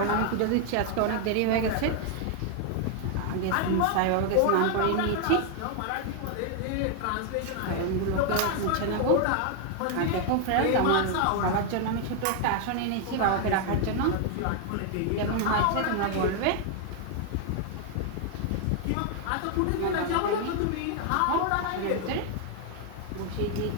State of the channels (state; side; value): different; both; correlation 0.00